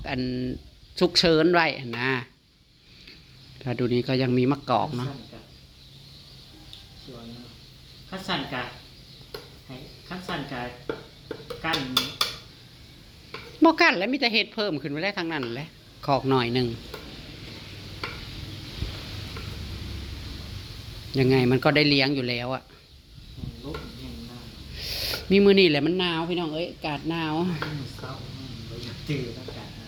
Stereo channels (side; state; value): both; identical; correlation 1.00